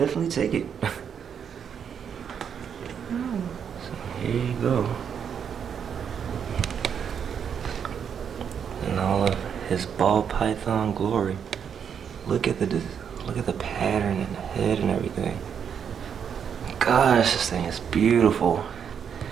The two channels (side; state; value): left; quieter; 7.6 dB